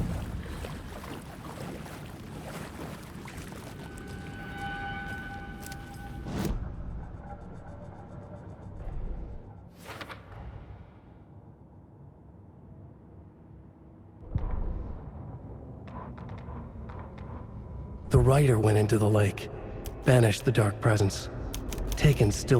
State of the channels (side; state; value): both; identical; correlation 1.00